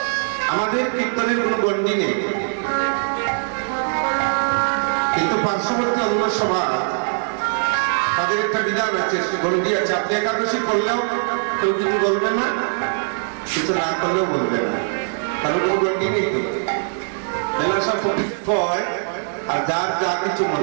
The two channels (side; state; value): left; silent; digital silence